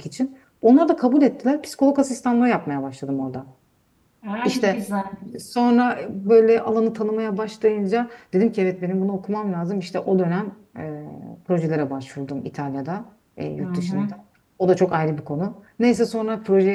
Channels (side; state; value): both; identical; correlation 1.00